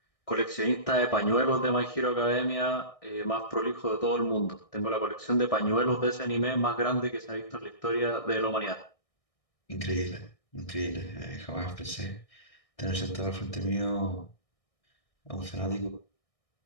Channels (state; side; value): late; right; 1.6 ms